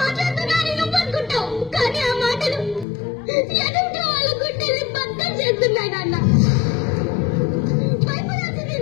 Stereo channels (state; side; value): drops out; right; at 2.9 s